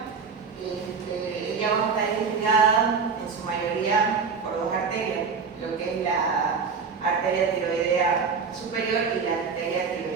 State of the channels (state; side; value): quieter; left; 5.4 dB